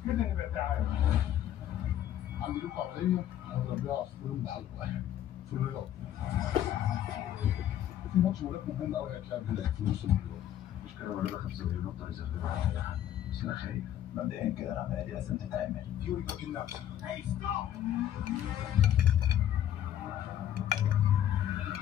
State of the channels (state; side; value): quieter; right; 11.3 dB